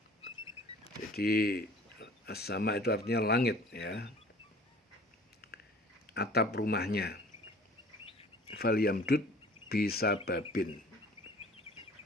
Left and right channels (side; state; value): both; normal; correlation 0.48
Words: Jadi as-sama itu artinya langit, ya, atap rumahnya. Falyamdud bisababin,